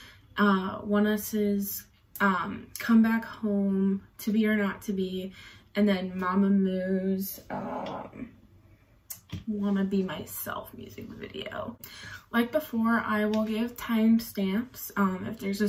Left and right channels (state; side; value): identical; both; correlation 1.00